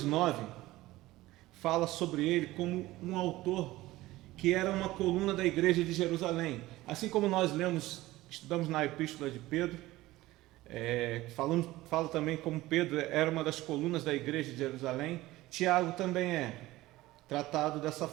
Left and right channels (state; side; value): quieter; left; 17.6 dB